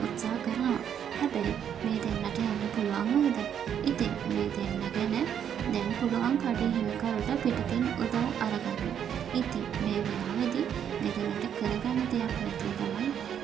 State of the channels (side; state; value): left; quieter; 8.9 dB